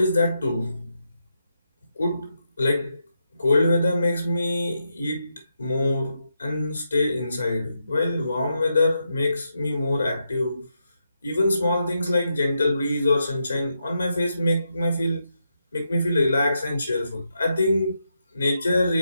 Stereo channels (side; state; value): both; inverted; correlation -0.83